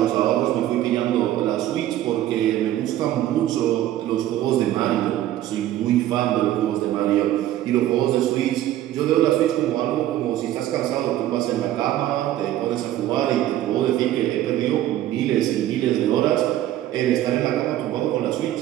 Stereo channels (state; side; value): quieter; left; 13.3 dB